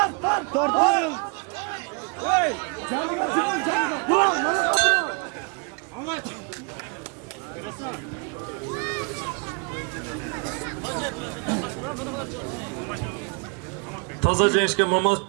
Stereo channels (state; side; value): quieter; left; 33.7 dB